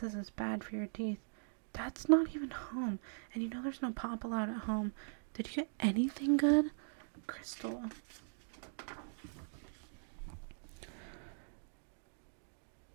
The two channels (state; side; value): silent; left; digital silence